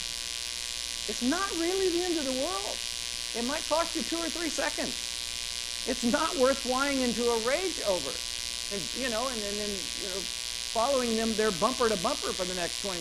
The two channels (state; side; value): identical; both; correlation 1.00